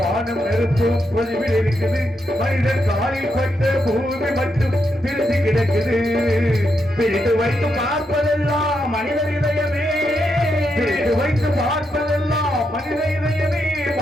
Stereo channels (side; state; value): both; normal; correlation 0.82